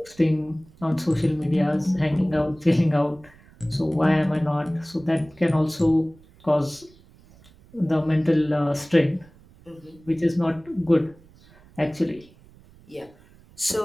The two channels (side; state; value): right; noise; rumble, 26 dB below the sound